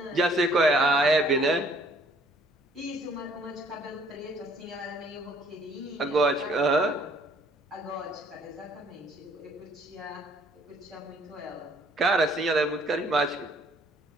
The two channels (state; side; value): normal; both; correlation 0.61